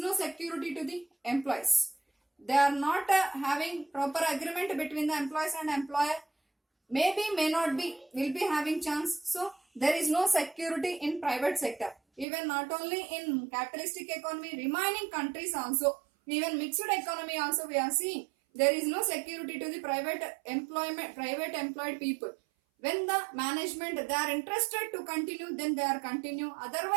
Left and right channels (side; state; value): left; drops out; at 12.2 s